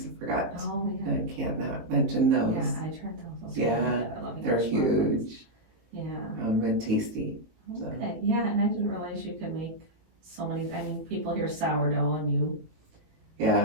Forgot. Oh, yeah. I can't not mention those. Yeah, I tried those. Those are Yeah, really good. I love they're English muffins. huge. Yeah. And tasty. So. Okay. Yeah, and I didn't realize you could make so many. I mean, people hear sourdough and you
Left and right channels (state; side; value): late; left; 18 ms